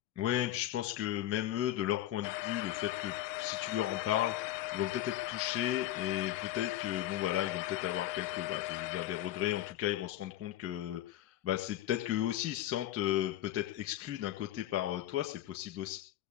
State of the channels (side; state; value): right; quieter; 13.4 dB